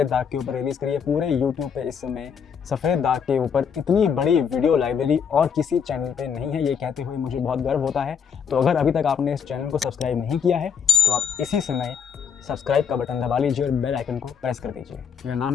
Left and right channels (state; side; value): quieter; right; 7.0 dB